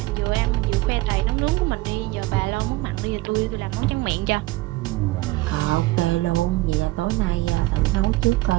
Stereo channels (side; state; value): left; quieter; 19.8 dB